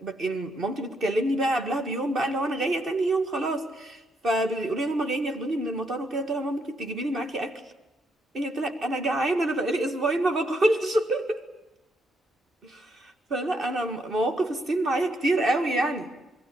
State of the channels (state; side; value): normal; both; correlation 0.76